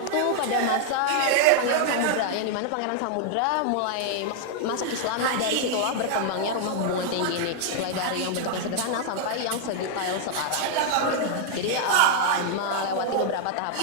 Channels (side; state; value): both; different; correlation 0.00